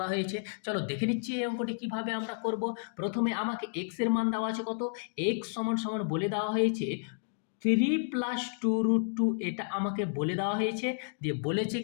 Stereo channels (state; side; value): silent; right; digital silence